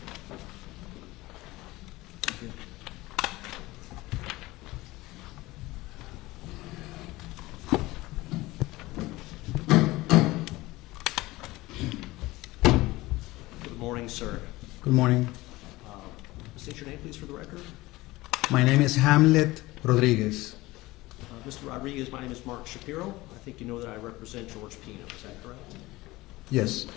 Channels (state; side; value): quieter; right; 19.6 dB